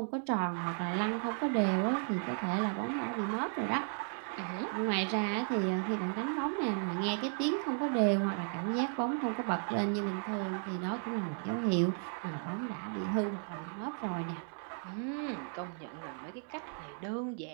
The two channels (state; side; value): silent; left; 55 dB below the other